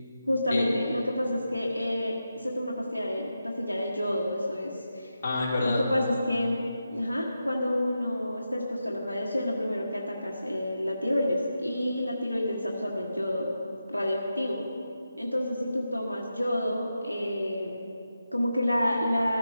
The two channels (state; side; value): inverted; both; correlation -0.89